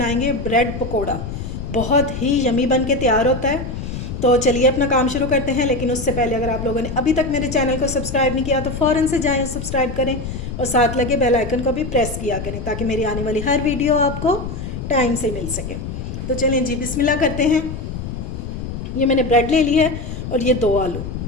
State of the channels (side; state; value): left; noise; rumble, 7 dB below the sound